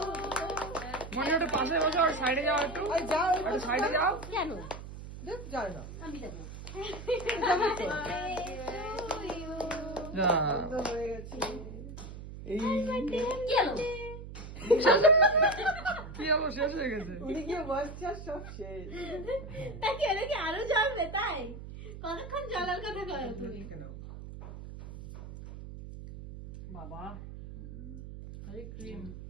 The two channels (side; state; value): right; noise; hum, 11 dB below the sound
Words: মনে ওটা পাশে বসো আর সাইডে যাও একটু। যাও একটু সাইডে যাও। কেন? দেখ যায় না আমি দেবো। যা তো হয়ে গেছে এই কি হলো? কি হলো শেষ হয়ে গেছে। উনি কি বাচ্চা সব শেষ তা কি হলো কি আরো জ্বলবে তাই? কতক্ষণ জ্বলার কথা কয় তুমি? বাবা আরে ক্রিম